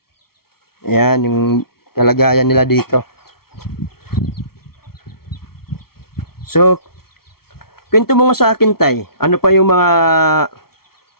Ayan, yung kalagayan nila dito. So, kwento mo nga sa akin, tay. Ano pa yung mga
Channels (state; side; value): late; right; 0.94 ms